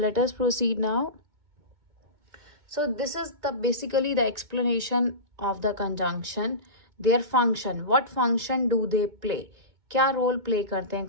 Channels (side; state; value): left; late; 2.2 ms